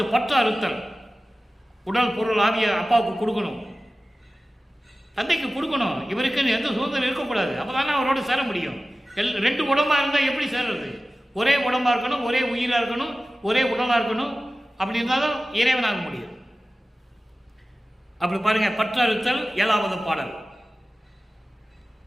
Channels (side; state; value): both; normal; correlation 0.96